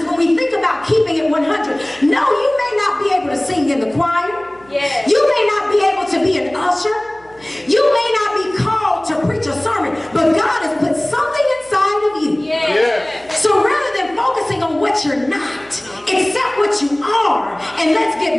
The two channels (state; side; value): noise; right; hum, 27 dB below the sound